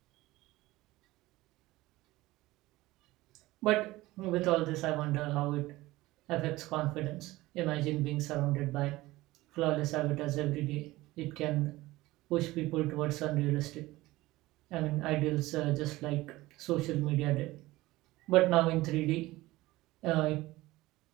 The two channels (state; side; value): quieter; left; 18.7 dB